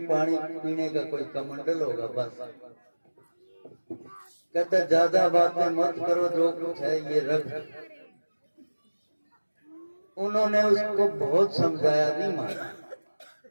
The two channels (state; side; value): inverted; both; correlation -1.00